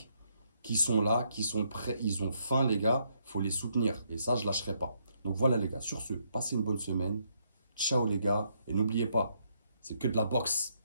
qui sont là, qui sont prêts. Ils ont faim, les gars. Il faut les soutenir. Et ça, je ne lâcherai pas. Donc voilà, les gars. Sur ce, passez une bonne semaine. Ciao, les gars. Et n'oubliez pas, c'est que de la boxe.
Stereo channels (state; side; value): inverted; both; correlation -0.74